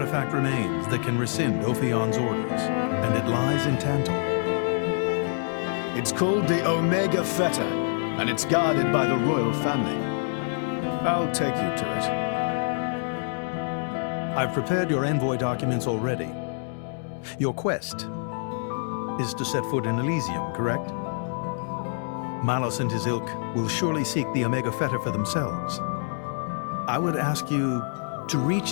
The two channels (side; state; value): right; silent; 61 dB below the other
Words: remains that can rescind Ophion's orders, and it lies in Tantal. It's called the Omega Feta, and it's guarded by the royal family. I'll take you to it. I've prepared your envoy documents already. Your quest is to set foot in Elysium, correct? Malos and his ilk will surely seek the Omega Feta for themselves. I would ask you to